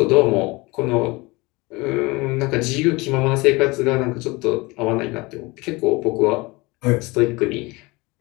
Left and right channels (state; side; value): quieter; right; 24.1 dB